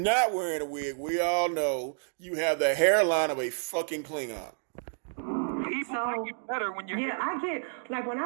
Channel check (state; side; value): silent; left; digital silence